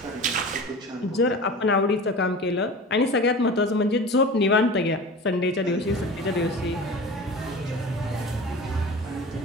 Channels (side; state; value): both; normal; correlation 0.35